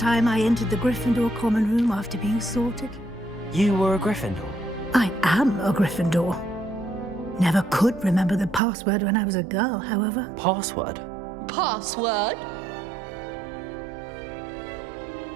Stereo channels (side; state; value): left; drops out; at 8.6 s